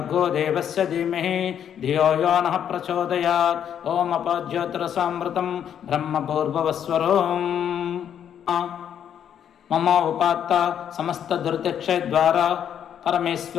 देवस्य धीमहि धियो यो नः प्रचोदयात् ओं अपज्योतिरसामृतं ब्रह्मपूर्ववस्वरों मम उपात्त समस्त दुर्दक्षद्वारा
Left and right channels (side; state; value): right; quieter; 9.1 dB